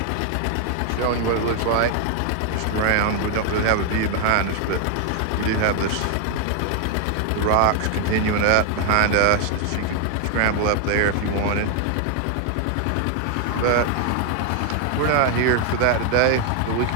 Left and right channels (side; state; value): both; different; correlation 0.00